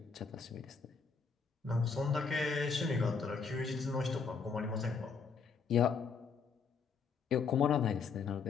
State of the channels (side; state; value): right; quieter; 5.4 dB